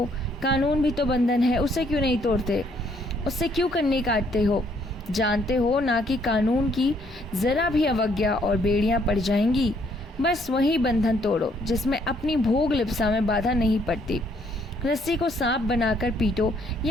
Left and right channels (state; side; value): normal; both; correlation 0.68